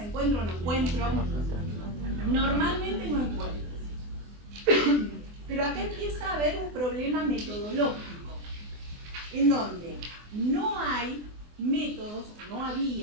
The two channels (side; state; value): left; late; 24 ms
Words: encuentro, no encuentro. Normalmente no encuentro. Pero acá empieza a haber un problema metodológico, en donde no hay métodos, o no